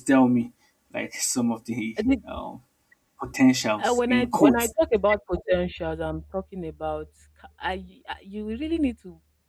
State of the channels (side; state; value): both; identical; correlation 1.00